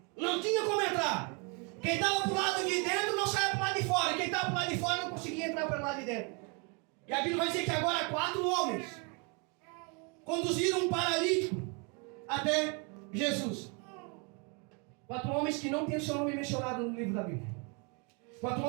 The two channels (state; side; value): quieter; left; 33.8 dB